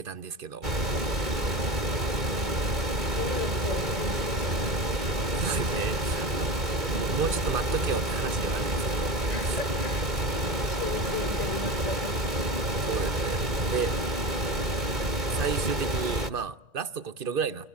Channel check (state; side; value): late; left; 2.2 ms